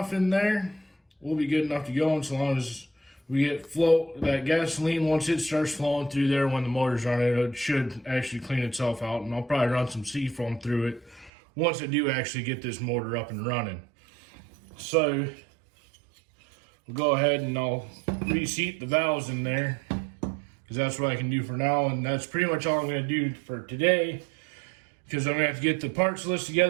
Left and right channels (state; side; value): drops out; left; at 11.3 s